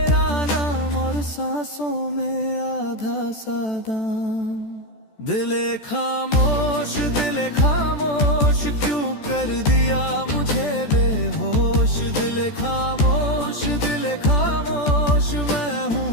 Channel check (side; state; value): right; late; 14 ms